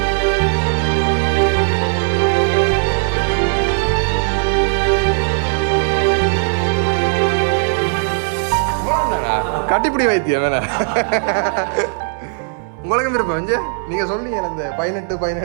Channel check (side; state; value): left; silent; digital silence